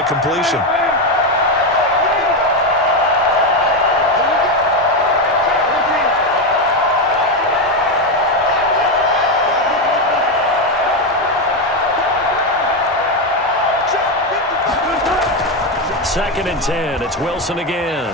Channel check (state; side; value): normal; both; correlation 0.09